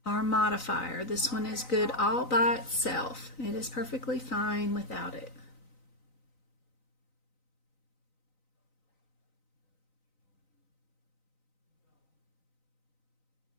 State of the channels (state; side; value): late; right; 3.9 ms